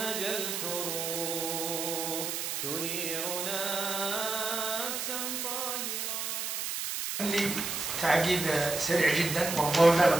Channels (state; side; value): noise; right; hiss, 3 dB below the sound